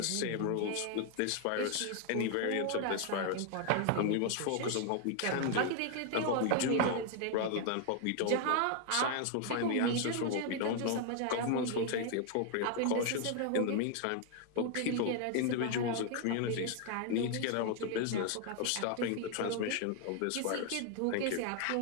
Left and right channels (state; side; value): different; both; correlation 0.00